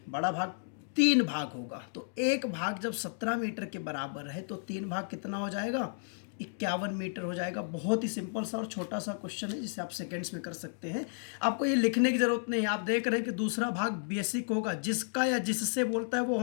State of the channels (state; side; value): silent; right; digital silence